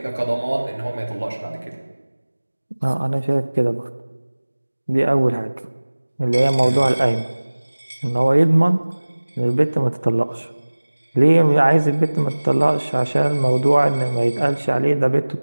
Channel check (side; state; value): both; inverted; correlation -1.00